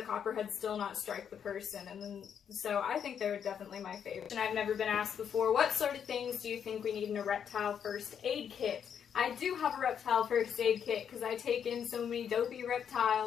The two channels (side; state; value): right; quieter; 8.0 dB